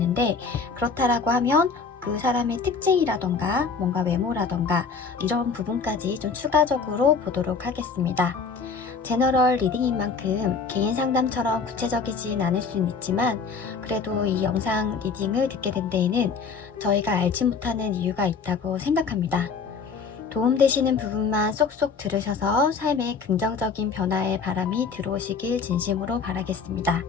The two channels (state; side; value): quieter; right; 5.2 dB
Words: 그렇다라고 하면 그 사람의 특징이라던가 뭔가 외모라던가 이런 부분까지 좀 추가적으로 보도록 하겠습니다. 제너럴 리딩인 만큼 개인 상담처럼 구체적이진 않을 수는 있지만, 그래도 이 영상 리딩을 듣게 된 데에는 저희가 알지 못하는 이유가 있다고 생각합니다. 도움되시는 부분만 쏙쏙 들으셔서 삶에 긍정적인 변화의 바람이 들어오시길 진심으로 바라겠습니다.